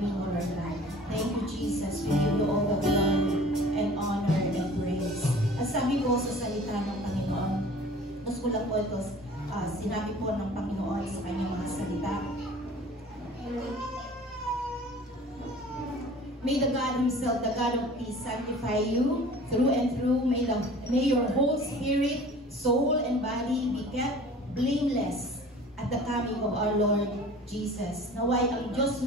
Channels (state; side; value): normal; both; correlation 0.45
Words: Lord God. Thank you, Jesus. We give you all the glory and honor and praise. At sabi ko sa salita ng Panginoon, mas ko lang po ito, sinabi po ng Panginoon sa kanyang mga salita. May the God Himself, the God of peace, sanctify you through and through. May your whole spirit, soul, and body be kept blameless at the coming of our Lord Jesus. Naway ang Diyos